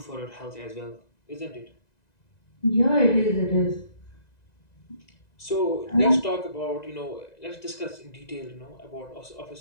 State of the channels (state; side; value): late; right; 1.9 ms